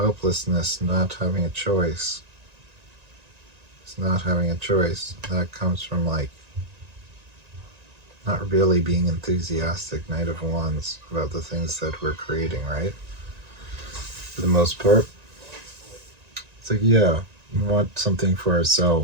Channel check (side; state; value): left; late; 1.9 ms